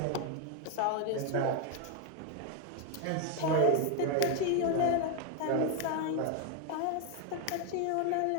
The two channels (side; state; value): both; different; correlation 0.01